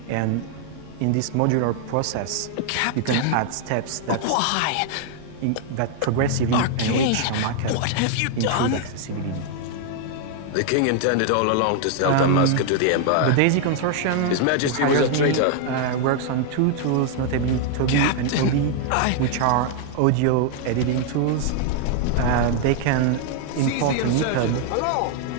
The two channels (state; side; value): different; both; correlation 0.00